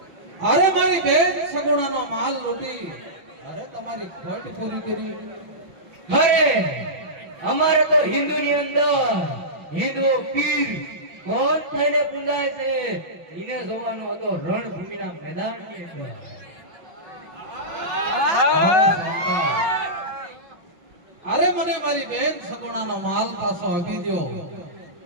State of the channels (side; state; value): left; late; 5.8 ms